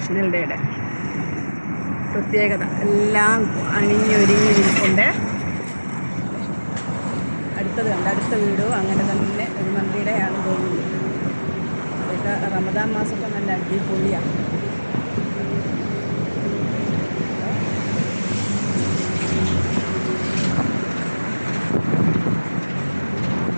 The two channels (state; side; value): inverted; both; correlation -1.00